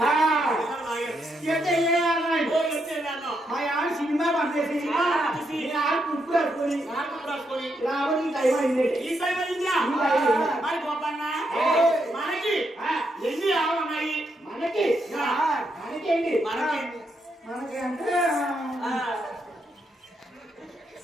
మా ఆడ సినిమా పంపేసి కుప్పు రాసుకొని రావడం టైం అయింది ఈ టైం అయిందా మరి గోపన్న మనకి ఎన్ని ఆవులు ఉన్నాయి మనకి మనకేంటి మనకి మనకి అంటే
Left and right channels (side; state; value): both; normal; correlation 0.80